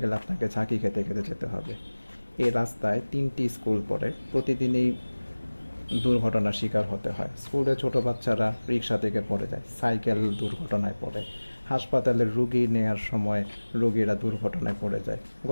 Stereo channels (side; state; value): both; inverted; correlation -1.00